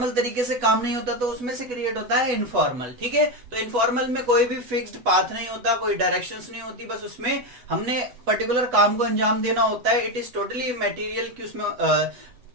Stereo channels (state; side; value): late; left; 8.1 ms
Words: तरीके से काम नहीं होता तो उसमें से क्रिएट होता है इनफॉर्मल। ठीक है, तो इनफॉर्मल में कोई भी फिक्स्ड पाथ नहीं होता, कोई डायरेक्शंस नहीं होती, बस उसमें हमने पर्टिकुलर काम को अंजाम देना होता है। इट इज टोटली मटेरियल कि उसमें